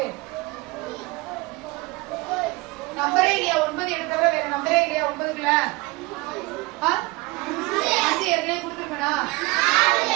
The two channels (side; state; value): left; quieter; 23.8 dB